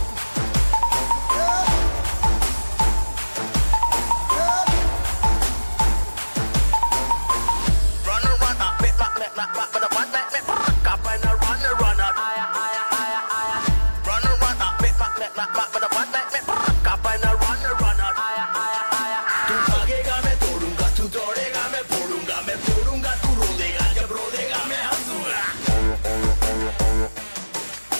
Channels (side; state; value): both; inverted; correlation -1.00